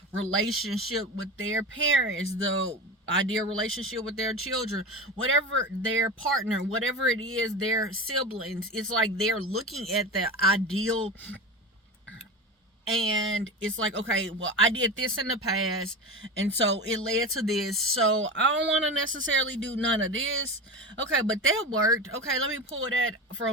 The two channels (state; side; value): normal; both; correlation 0.26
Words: relationship with their parents, the ideal relationship with their children, whatever their partner, whatever it is, their siblings. It's like they're looking at the ideal, and it's like, okay, well, I did this in the past, and so it led to this, so I don't want to necessarily do none of this. Okay, but that worked. Okay, let me pull that